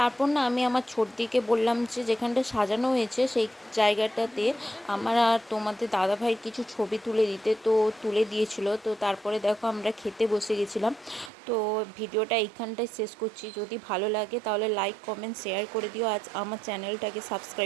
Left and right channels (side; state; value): left; drops out; at 11.3 s